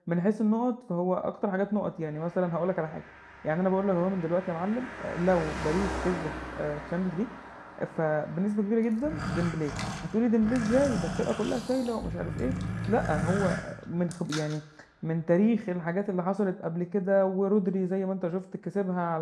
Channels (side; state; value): both; identical; correlation 1.00